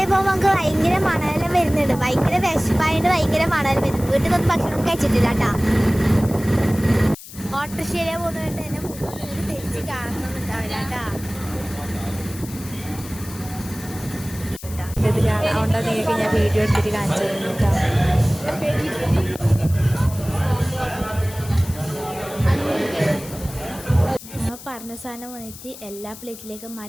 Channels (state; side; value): noise; left; hiss, 15 dB below the sound